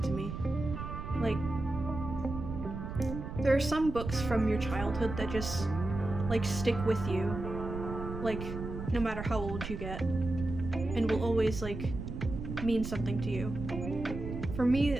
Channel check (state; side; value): noise; right; rumble, 7 dB below the sound